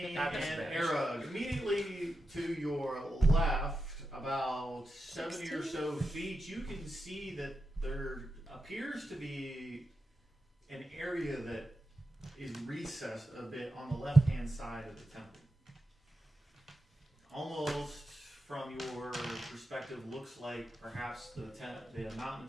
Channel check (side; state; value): both; normal; correlation 0.90